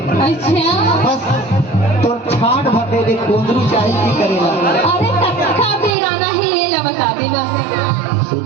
अच्छा बस तो छाट भटे दे कुंदरू चाही की करेला अरे कक्का बेराना है ये ला बता दे बस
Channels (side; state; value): left; drops out; at 6.0 s